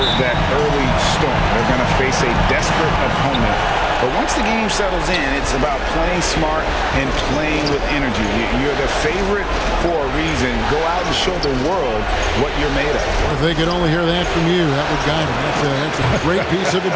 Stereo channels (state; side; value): identical; both; correlation 1.00